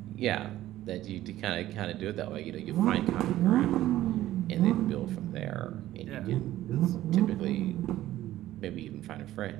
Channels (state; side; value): quieter; left; 14.3 dB